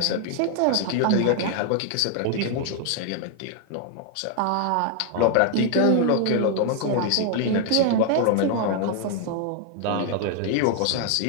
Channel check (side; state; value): both; different; correlation 0.00